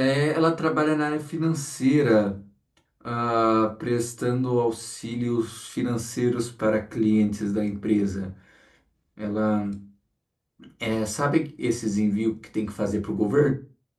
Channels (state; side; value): identical; both; correlation 1.00